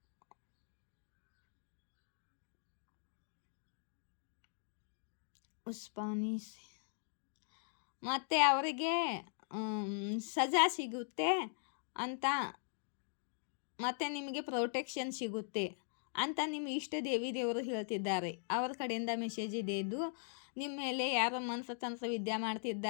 ಉಸ್ಪಾನೀಸ್ ಮತ್ತು ಅವರಿಗೆ ಸಜಾ ಸಿಗುತ್ತೆ ಅಂತ, ಮತ್ತು ನಿಮಗೆ ಪ್ರೊಟೆಕ್ಷನ್ ಸಿಗುತ್ತೆ ಅಂತ ನಿಮ್ಮ ಇಷ್ಟ ದೇವರು ಹೇಳ್ತಿದ್ದಾರೆ. ಅವ್ರ ಕಡೆಯಿಂದ ಮೆಸೇಜ್ ಇದೆ ಇದು. ನಿಮ್ಮ ಮೇಲೆ ಯಾರೋ ಮನಸ್ತಂತ್ರ ವಿದ್ಯೆ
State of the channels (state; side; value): silent; right; digital silence